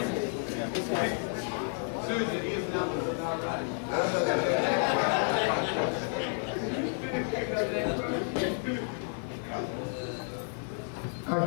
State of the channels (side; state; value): right; silent; 57 dB below the other